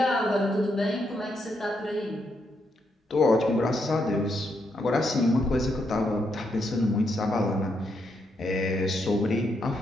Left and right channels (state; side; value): normal; both; correlation 0.79